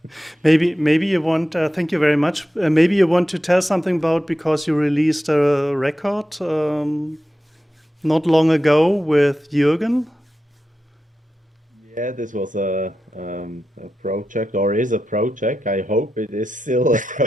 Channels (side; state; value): both; normal; correlation 0.90